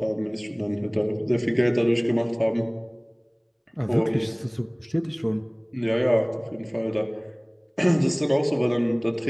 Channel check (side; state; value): both; identical; correlation 1.00